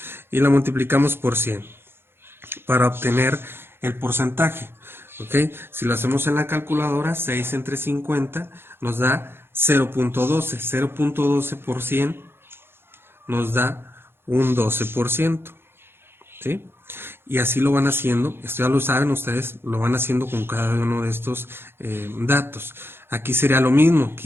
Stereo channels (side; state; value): left; late; 0.11 ms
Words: y la multiplicamos por 100 para obtener el porcentaje. ¿Ok? Si lo hacemos en la calculadora, 6 entre 50 nos da 0.12. 0.12 por 100 nos da un 12%. ¿Sí? Y así lo van haciendo. Esto ya lo saben ustedes, lo van haciendo con cada uno de estos datos. Aquí sería lo mismo.